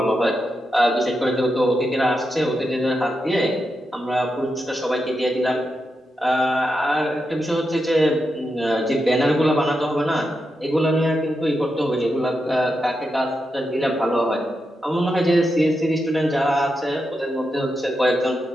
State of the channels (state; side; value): normal; both; correlation 0.86